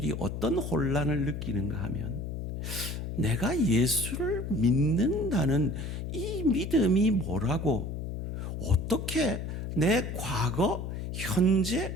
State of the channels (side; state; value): left; noise; hum, 5 dB below the sound